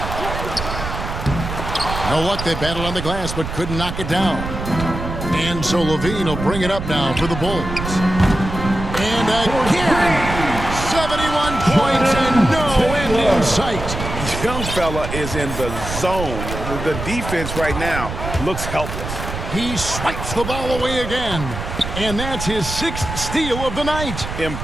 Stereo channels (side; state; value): right; noise; rumble, 6 dB below the sound